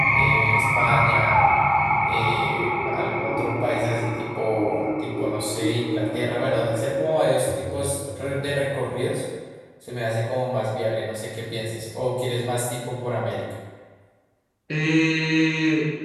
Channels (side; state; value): both; identical; correlation 1.00